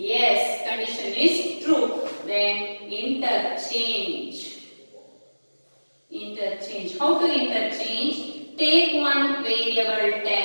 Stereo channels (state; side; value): inverted; both; correlation -1.00